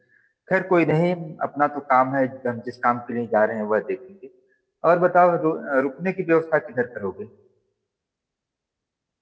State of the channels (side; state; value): both; identical; correlation 1.00